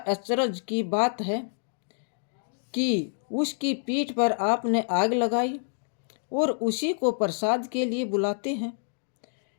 की बात है कि उसकी पीठ पर आपने आग लगाई और उसी को प्रसाद के लिए बुलाते हैं।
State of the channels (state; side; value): silent; right; digital silence